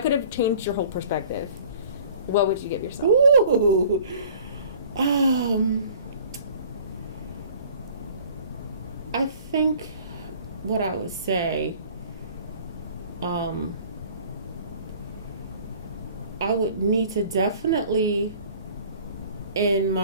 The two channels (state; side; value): inverted; both; correlation -0.50